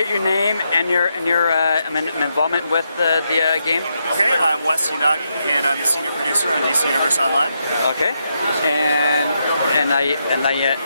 your name and your involvement with the game. Okay, I'm Wes Unagi, and I'm the senior producer on DC Universe Online. Okay, and I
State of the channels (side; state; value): both; inverted; correlation -0.82